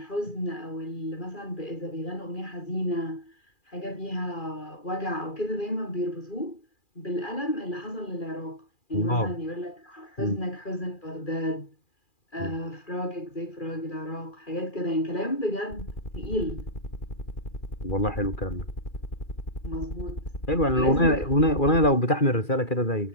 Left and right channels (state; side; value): late; right; 2.4 ms